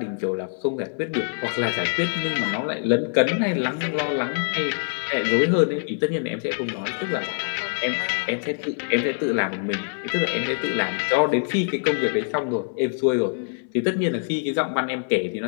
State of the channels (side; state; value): right; silent; 62 dB below the other